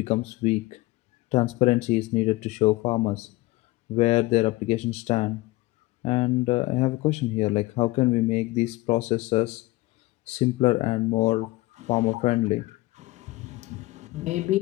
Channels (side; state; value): right; quieter; 20.0 dB